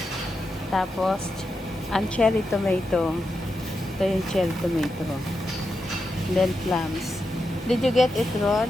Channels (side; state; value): both; normal; correlation 0.87